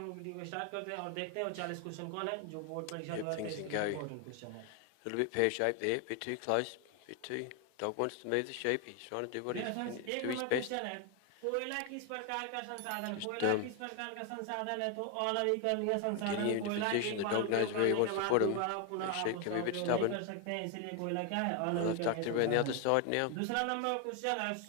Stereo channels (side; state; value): both; different; correlation 0.01